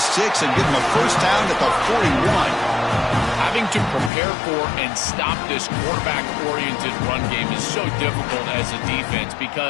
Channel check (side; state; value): right; drops out; at 4.1 s